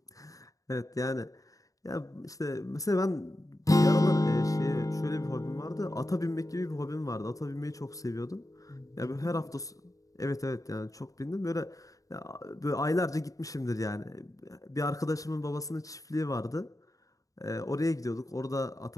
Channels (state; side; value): late; right; 0.16 ms